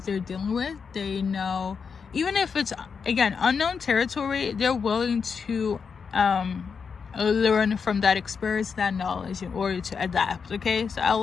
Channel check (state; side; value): quieter; right; 5.9 dB